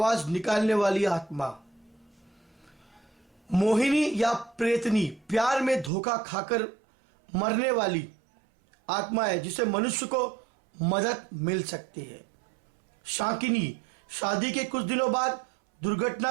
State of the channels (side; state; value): left; drops out; at 5.9 s